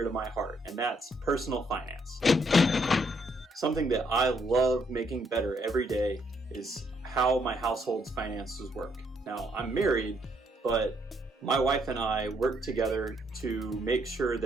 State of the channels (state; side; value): normal; both; correlation 0.72